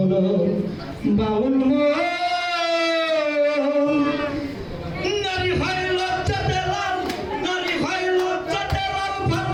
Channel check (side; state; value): both; identical; correlation 1.00